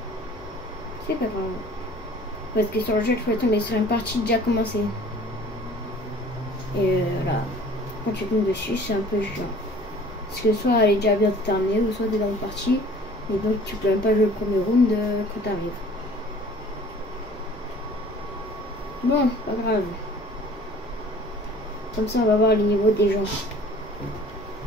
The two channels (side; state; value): both; normal; correlation 0.50